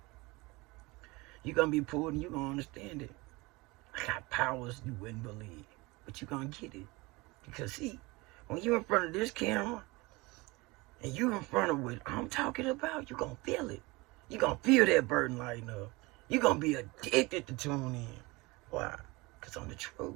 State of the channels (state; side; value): quieter; left; 23.6 dB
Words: You're going to be pulled and you're going to understand it. I got powers you wouldn't believe. But you're going to get it. Because, see, when you're in front of this camera, and you're in front of what I'm talking about, you're going to feel it. You're going to feel that burden lighten up. You're going to be addicted to tune in. Why? Because I'm the truth.